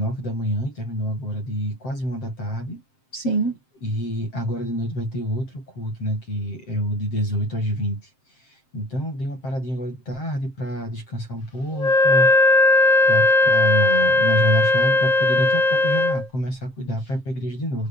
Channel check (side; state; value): right; late; 7.6 ms